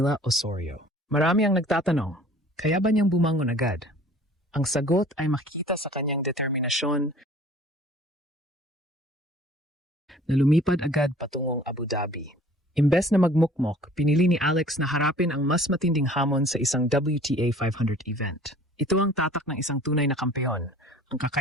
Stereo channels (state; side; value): normal; both; correlation 0.50